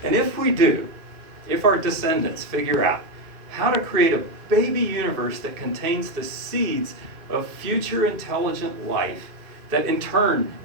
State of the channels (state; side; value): late; left; 2.5 ms